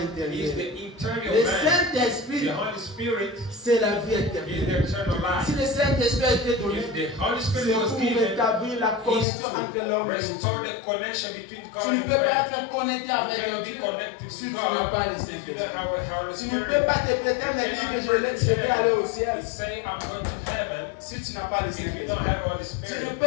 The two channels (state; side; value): drops out; right; at 9.2 s